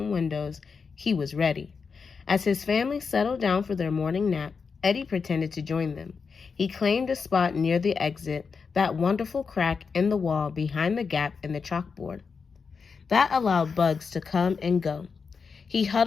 windows, he was ready. As his family settled down for their morning nap, Eddie pretended to join them. He claimed a spot near the exit, that wonderful crack in the wall behind the gap in the chalkboard. That allowed bugs to come and go. He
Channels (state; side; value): quieter; right; 5.4 dB